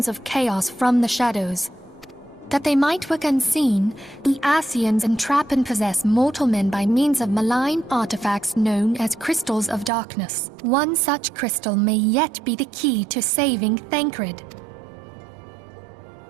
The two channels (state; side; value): drops out; left; at 9.9 s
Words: of chaos from the shadows. That they might work unseen, the Ascians entrap and possess mortal men by means of malign artifacts known as crystals of darkness. One such crystal may yet be the key to saving Thancred.